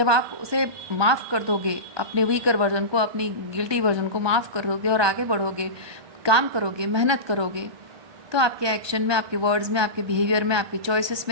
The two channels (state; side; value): late; left; 1.2 ms